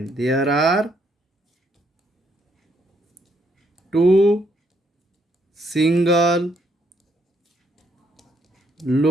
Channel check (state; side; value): normal; both; correlation 0.72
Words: there are 2 single